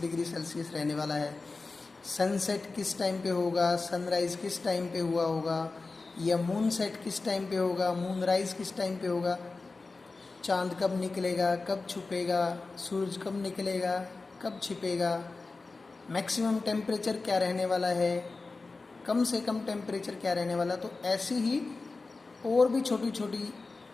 डिग्री सेल्सियस रहने वाला है। सनसेट किस टाइम पे होगा, सनराइज किस टाइम पे हुआ होगा, या मून सेट किस टाइम पे होगा, मून राइज किस टाइम पे होगा, चांद कब निकलेगा, कब छुपेगा, सूरज कब निकलेगा, कब छिपेगा, मैक्सिमम टेम्परेचर क्या रहने वाला है, कम से कम टेम्परेचर क्या रहने वाला। तो ऐसी ही और भी छोटी छोटी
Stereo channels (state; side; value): quieter; right; 3.8 dB